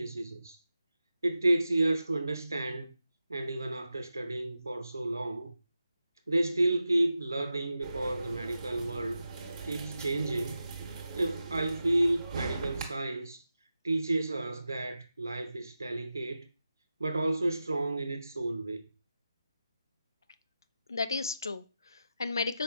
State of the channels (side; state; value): both; inverted; correlation -0.91